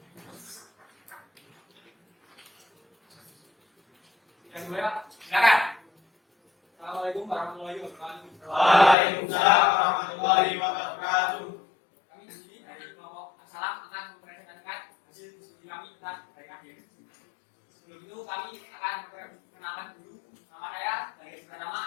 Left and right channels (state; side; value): drops out; right; at 9.0 s